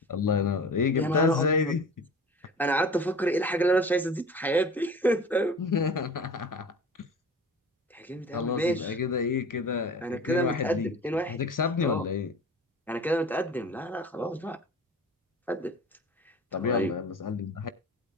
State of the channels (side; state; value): both; normal; correlation 0.39